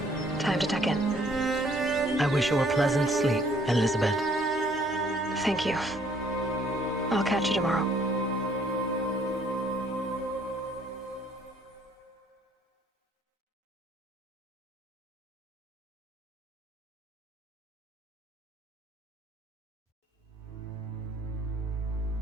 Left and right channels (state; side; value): normal; both; correlation 0.62